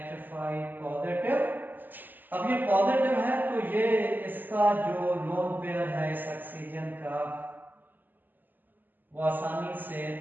positive. अब ये पॉजिटिव है तो ये इसका जो लोन पेयर है इस ऑक्सीजन का, वो आसानी से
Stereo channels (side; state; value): left; late; 0.088 ms